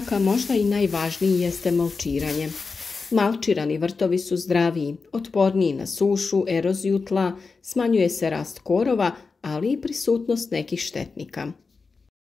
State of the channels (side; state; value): right; quieter; 4.5 dB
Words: a možda i najvažniji, jeste malčiranje. Malčirani vrtovi su zdraviji, otporniji na sušu, eroziju tla, smanjuje se rast korova, ali i prisutnost nekih štetnika.